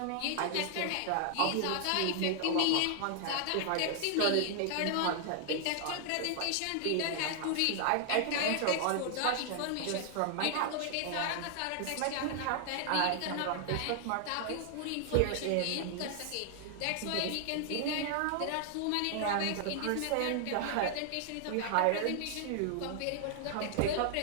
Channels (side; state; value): both; different; correlation 0.00